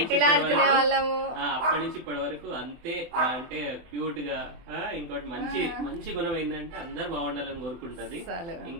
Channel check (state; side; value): late; left; 24 ms